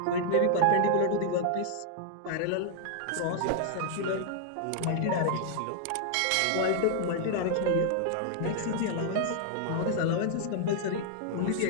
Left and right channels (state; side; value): different; both; correlation -0.01